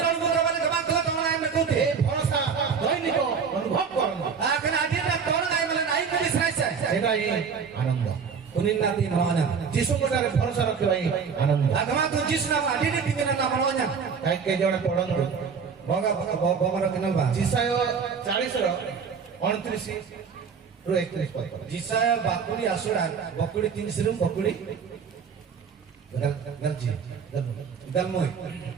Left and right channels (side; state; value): left; quieter; 6.1 dB